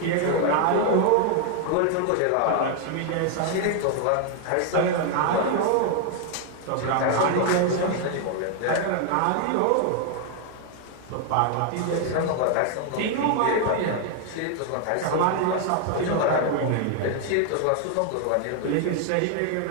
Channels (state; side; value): different; both; correlation 0.00